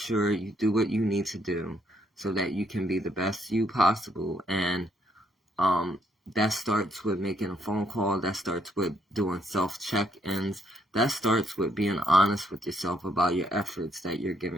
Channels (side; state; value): both; normal; correlation 0.72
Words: you do what you need to do so that you can be the best you possible. And that starts with making a phone call. That starts with doing self-check-ins. That starts with being honest with yourself about your efforts that you're